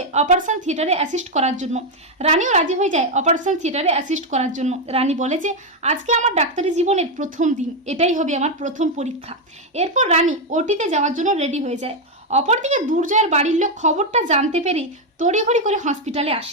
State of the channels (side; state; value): both; normal; correlation 0.04